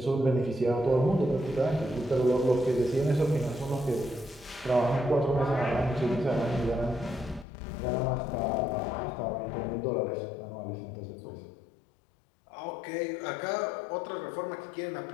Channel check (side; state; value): right; drops out; at 7.5 s